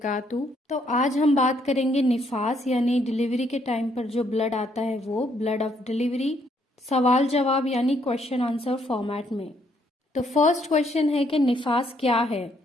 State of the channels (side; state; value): both; normal; correlation 0.70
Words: تو آج ہم بات کریں گے نفاس یعنی ڈیلیوری کے ٹائم پر جو بلڈ آتا ہے وہ بلڈ آف ڈیلیوری، سوال جواب یعنی کوشچن آنسر فارمیٹ میں۔ تو فرسٹ کوشچن ہے کہ نفاس کیا ہے؟